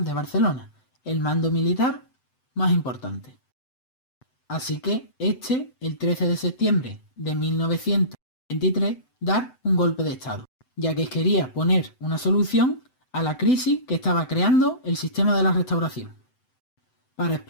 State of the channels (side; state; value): right; late; 7.9 ms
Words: de Barcelona, el mando militar más importante. Así que el 13 de septiembre de 1923, dar un golpe de estado, ya que quería poner una solución a la crisis que estaba creando el sistema de la restauración. Para